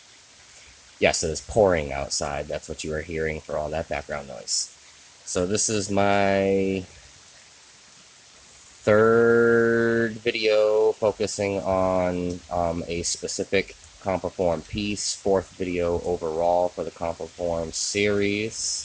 Yes, it is pouring outside. That's what you are hearing for all that background noise. So this is my third video focusing on a specific CompoForm piece, fourth video overall for the CompoForm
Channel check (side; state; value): both; identical; correlation 1.00